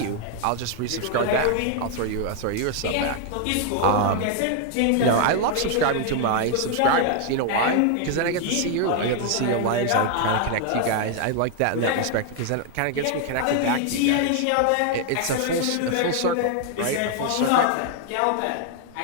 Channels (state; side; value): different; both; correlation 0.00